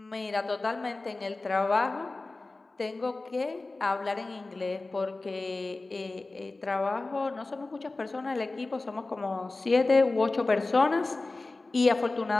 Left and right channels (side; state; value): right; quieter; 3.3 dB